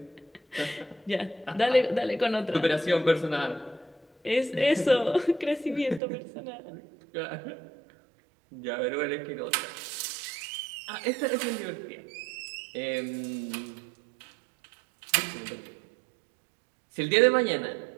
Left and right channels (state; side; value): drops out; left; at 6.0 s